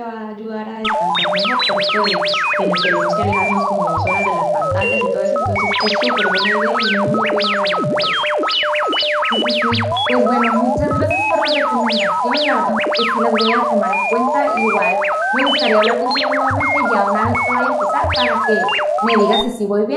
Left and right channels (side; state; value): both; identical; correlation 1.00